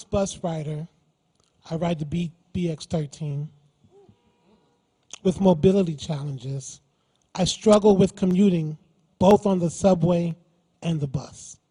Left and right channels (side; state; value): both; identical; correlation 1.00